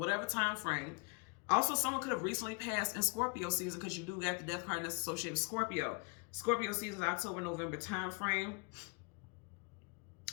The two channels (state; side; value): quieter; right; 32.2 dB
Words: time frame. Also, someone could have recently passed in Scorpio season, because you do get the death card that's associated with Scorpio. Scorpio season is October, November time frame.